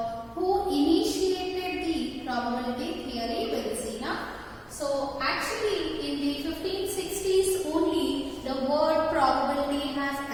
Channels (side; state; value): both; identical; correlation 1.00